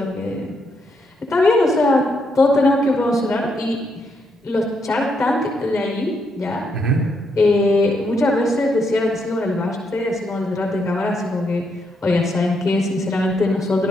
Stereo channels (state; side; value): normal; both; correlation 0.78